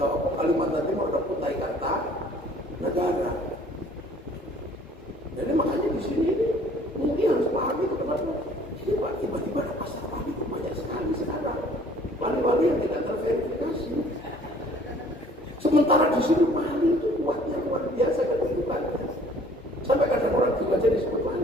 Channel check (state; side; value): normal; both; correlation 0.55